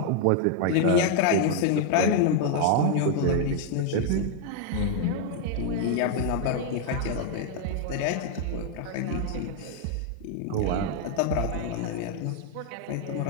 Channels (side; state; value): both; different; correlation 0.00